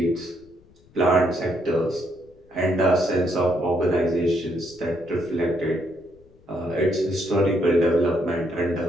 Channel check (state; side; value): noise; left; rumble, 29 dB below the sound